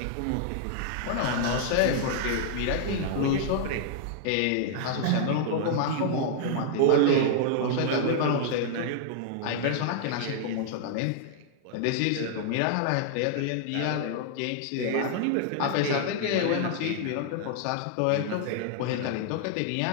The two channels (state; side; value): different; both; correlation -0.01